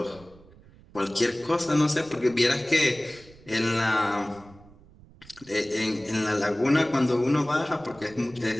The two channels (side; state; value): right; noise; rumble, 24 dB below the sound